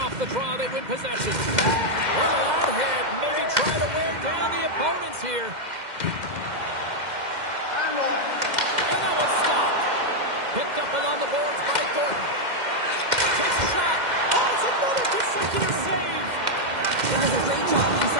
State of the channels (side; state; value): left; late; 2.1 ms